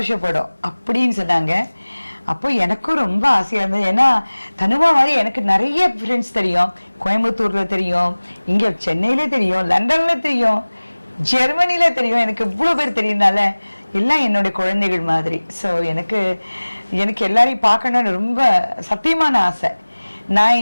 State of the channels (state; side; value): inverted; both; correlation -1.00